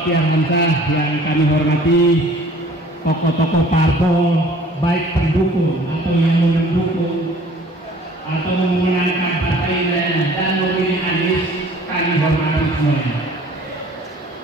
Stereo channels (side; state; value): both; normal; correlation 0.51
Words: Hamzah yang kami hormati, tokoh-tokoh parpol, baik pendukung atau yang mendukung atau memenangkan partai dan memilih Anies, kami hormati semuanya.